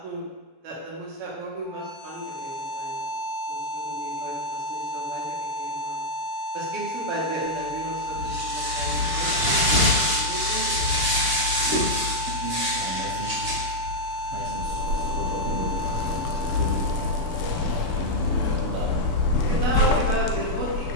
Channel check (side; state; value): left; late; 7.0 ms